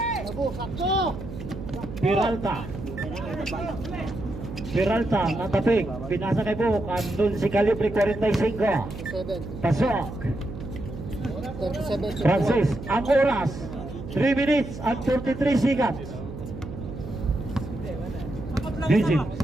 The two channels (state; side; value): noise; right; hum, 10 dB below the sound